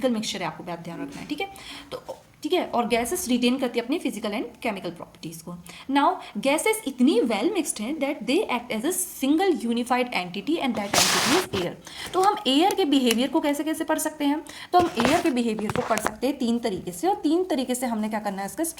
मिक्सचर है, आपको बात ध्यान रखना है। ठीक है, तो ठीक है, और गैसेस रिटेन करती है अपनी फिजिकल एंड केमिकल प्रॉपर्टीज को। नाउ गैसेस इतनी वेल मिक्सड हैं that they act as a single unified entity and that entity is air. तो हम एयर के बिहेवियर को कैसे कैसे पढ़ सकते हैं? तो हम एयर के बिहेवियर को पढ़ सकते हैं तीन तरीके से, और तीन तरीके से हमने क्या करना है? इसका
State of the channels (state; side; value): identical; both; correlation 1.00